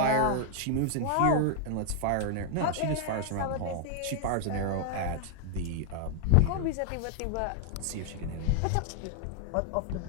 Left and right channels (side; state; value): both; different; correlation 0.00